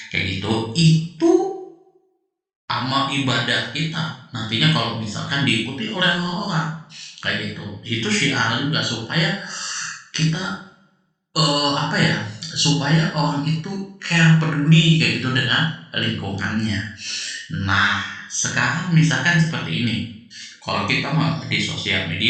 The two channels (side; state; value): both; identical; correlation 1.00